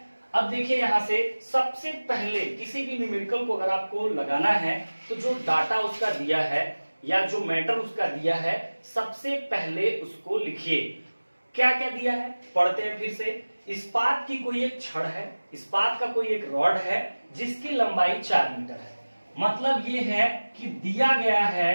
अब देखिए यहां से सबसे पहले किसी भी न्यूमेरिकल को अगर आपको लगाना है तो जो डाटा उसका दिया है या जो मैटर उसका दिया है, सबसे पहले उसको लिखिए। क्या क्या दिया है पढ़ते हैं फिर से। इस्पात की कोई एक छड़ है, इस्पात का कोई एक रॉड है जिसकी लंबाई 4 मीटर है। मतलब ये है कि दिया गया है,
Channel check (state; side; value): inverted; both; correlation -1.00